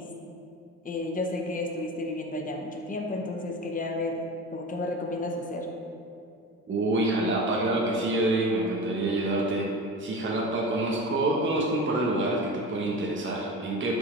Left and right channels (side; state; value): both; normal; correlation 0.31